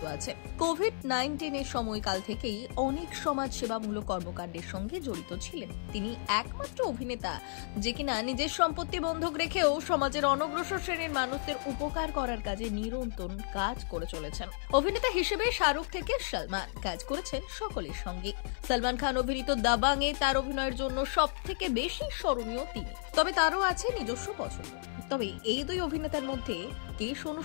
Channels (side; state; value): right; silent; 56 dB below the other